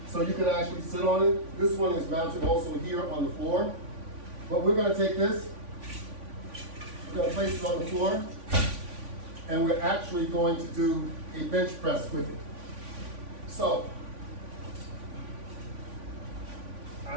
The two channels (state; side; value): late; left; 3.5 ms